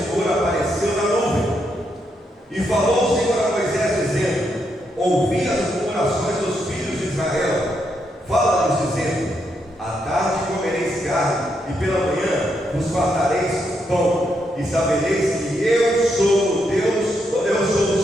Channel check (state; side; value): normal; both; correlation 0.80